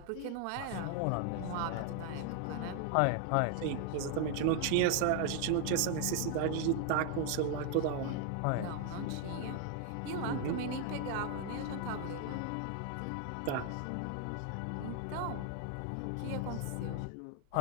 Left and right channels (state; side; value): different; both; correlation 0.00